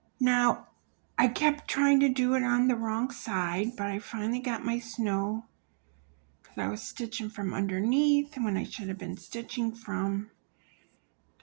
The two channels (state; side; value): silent; left; digital silence